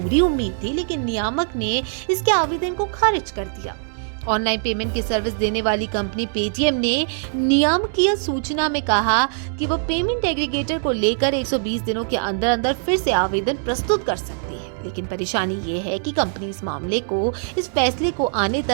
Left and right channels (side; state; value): left; silent; digital silence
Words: उम्मीद थी, लेकिन नियामक ने इसके आवेदन को खारिज कर दिया। ऑनलाइन पेमेंट की सर्विस देने वाली कंपनी पेटीएम ने नियामकीय सूचना में कहा कि वो पेमेंट एग्रीगेटर को लेकर 120 दिनों के अंदर अंदर फिर से आवेदन प्रस्तुत कर सकती है, लेकिन परेशानी ये है कि कंपनी इस फैसले को आने